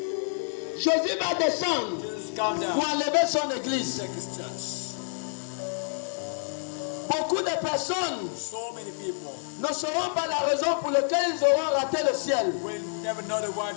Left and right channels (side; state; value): right; silent; digital silence